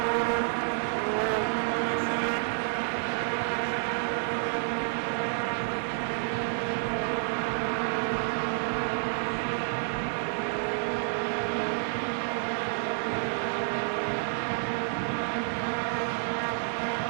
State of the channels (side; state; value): left; silent; digital silence